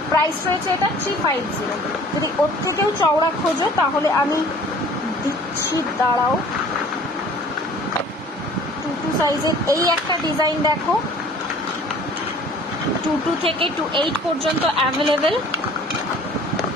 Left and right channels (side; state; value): both; normal; correlation 0.50